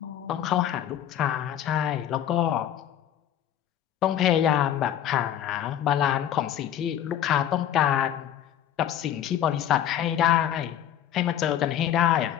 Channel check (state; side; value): quieter; right; 10.6 dB